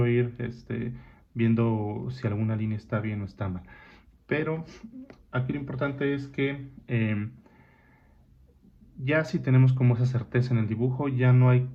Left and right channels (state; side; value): identical; both; correlation 1.00